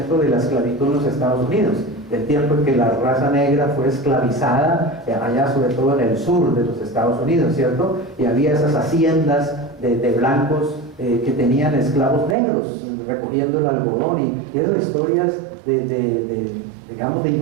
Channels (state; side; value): drops out; left; at 12.4 s